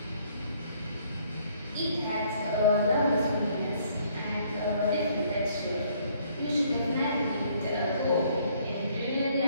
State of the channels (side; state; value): both; inverted; correlation -0.64